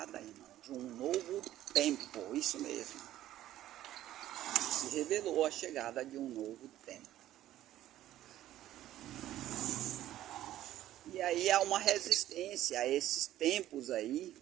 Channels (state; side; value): quieter; left; 13.4 dB